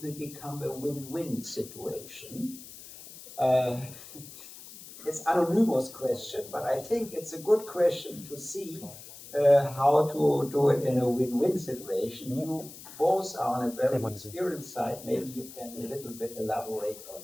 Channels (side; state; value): left; noise; hiss, 16 dB below the sound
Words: will become a win-win situation? It's an anonymous question, but I think it's a good question to see how to do it in a win-win situation. You both are on a very experienced side. Maybe you can a little bit elaborate